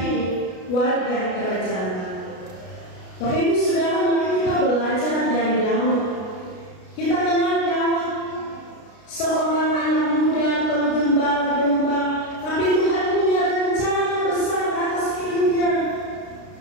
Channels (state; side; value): late; right; 33 ms